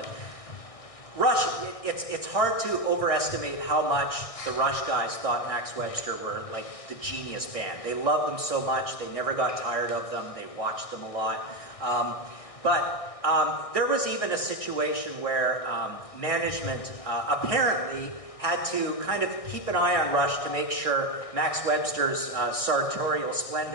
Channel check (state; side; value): late; right; 1.6 ms